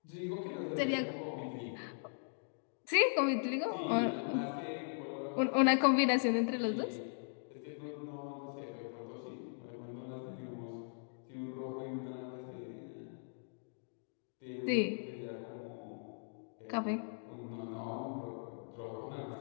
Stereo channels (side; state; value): right; silent; digital silence